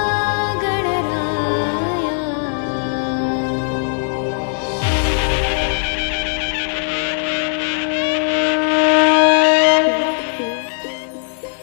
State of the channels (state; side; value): silent; right; 61 dB below the other